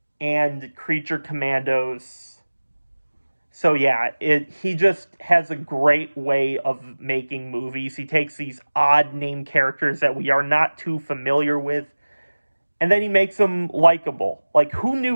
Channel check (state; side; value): inverted; both; correlation -1.00